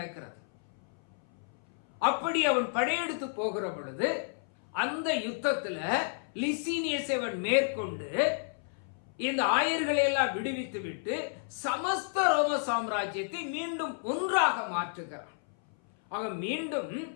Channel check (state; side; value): silent; right; 57 dB below the other